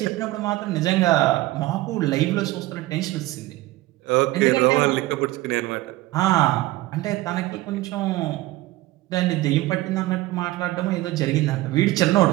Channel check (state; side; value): quieter; left; 17.7 dB